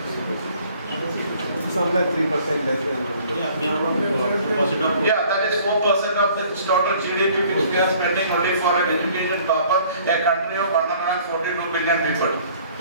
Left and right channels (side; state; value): both; inverted; correlation -0.56